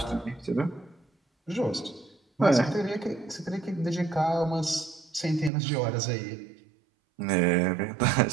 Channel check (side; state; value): left; drops out; at 5.5 s